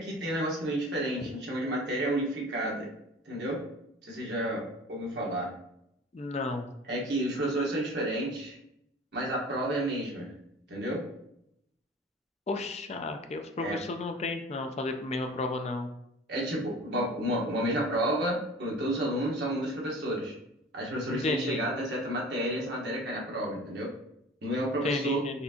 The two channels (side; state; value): both; normal; correlation 0.41